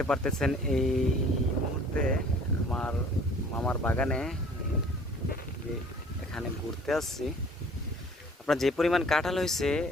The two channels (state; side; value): normal; both; correlation 0.52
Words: পারতেছেন এই মুহূর্তে আমার মামার বাগানে যে এখানে ঘুরতে আসছি। আপনার যে পরিমাণ কাঁঠাল হয়েছে